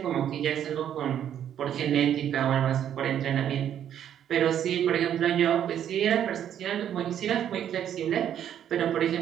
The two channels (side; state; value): left; quieter; 10.0 dB